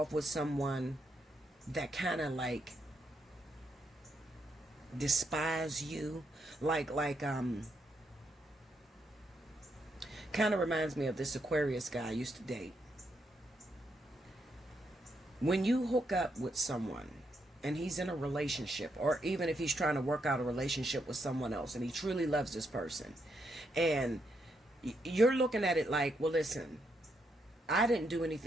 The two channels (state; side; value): normal; both; correlation 0.79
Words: with someone that kind of like despise you? Like kind of reminds me of this Aquarius guy I used to date. When you hook up with someone and he's in a relationship, or even if he's trying to work out a relationship with someone else and he truly loves this person, and you're looking at it like, well, listen, I didn't do